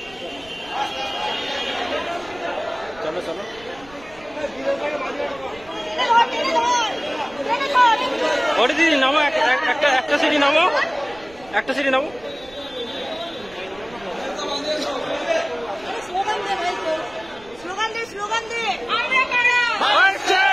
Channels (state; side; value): noise; right; rumble, 23 dB below the sound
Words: চলো চলো ওটি দিদি নামো, একটা সিটি নামো, একটা সিটি নামো। স্লোগান দে